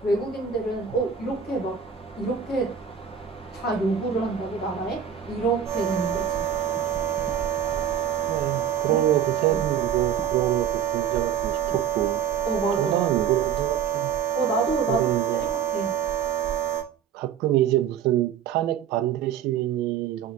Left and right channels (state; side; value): quieter; left; 8.3 dB